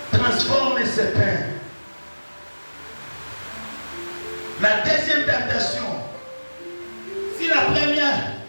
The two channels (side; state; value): both; inverted; correlation -1.00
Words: transforme ce pain. La deuxième tentation, si la première,